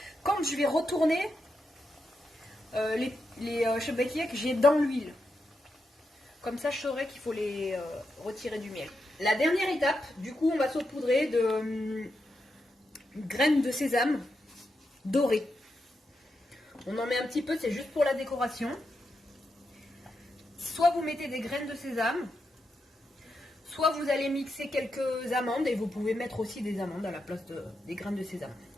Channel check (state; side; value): normal; both; correlation 0.85